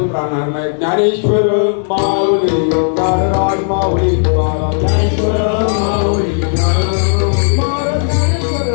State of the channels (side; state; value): right; silent; 67 dB below the other